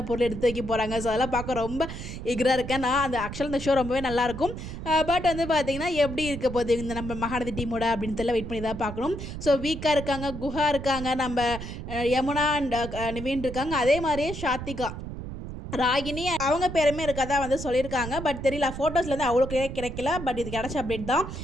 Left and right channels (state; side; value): noise; right; rumble, 8 dB below the sound